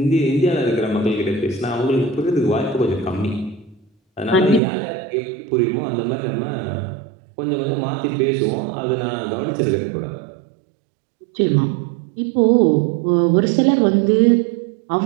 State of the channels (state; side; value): drops out; left; at 4.6 s